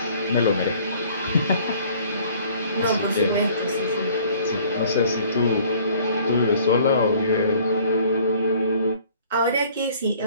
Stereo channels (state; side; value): inverted; both; correlation -0.55